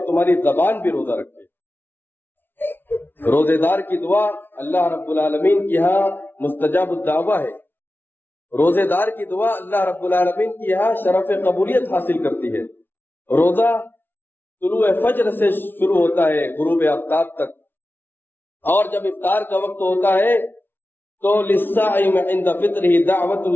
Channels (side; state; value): right; late; 0.10 ms